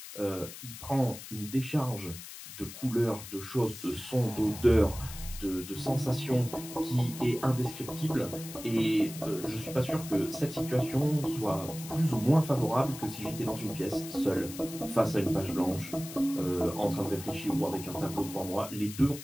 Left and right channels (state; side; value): noise; left; hiss, 13 dB below the sound